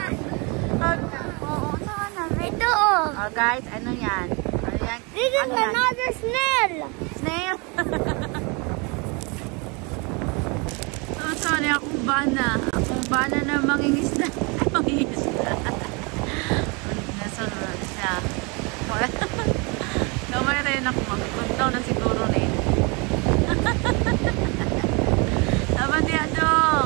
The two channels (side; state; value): left; quieter; 30.2 dB